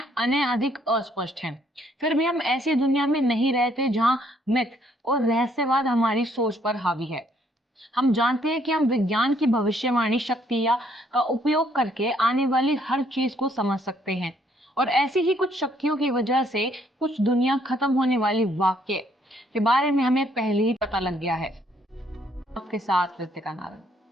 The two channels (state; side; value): normal; both; correlation 0.67